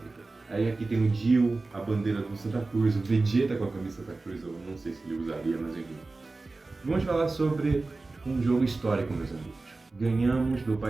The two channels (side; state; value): left; quieter; 3.4 dB